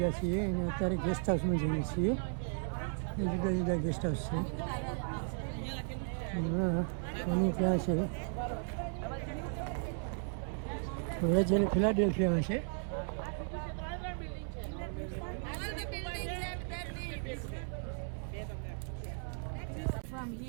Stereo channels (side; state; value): left; silent; 54 dB below the other